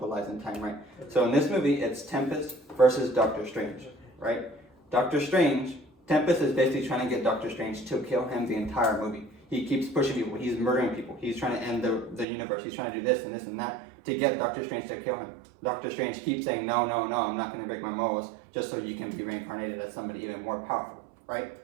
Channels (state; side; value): drops out; left; at 12.2 s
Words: lives in time, right? So in this movie, it's Tempest versus Doctor Strange, right? Doctor Strange Tempest is basically trying to get Doctor Strange to kill him the entire movie. He keeps pushing people. He's murdering people. He's trying to end the universe. He's trying to do this and this and that to get Doctor Strange to kill him. Doctor Strange keeps saying, no, no, no, I'm not going to break my morals just so you can be reincarnated as somebody even more powerful, right?